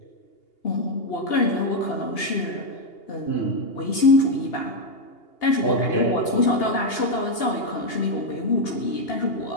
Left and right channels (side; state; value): right; late; 2.8 ms